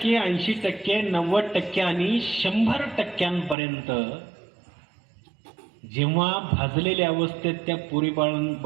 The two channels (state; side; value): drops out; left; at 3.6 s